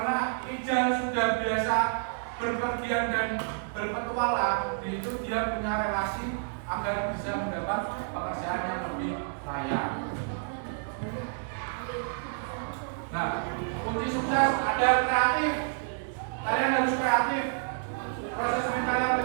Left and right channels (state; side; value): silent; left; digital silence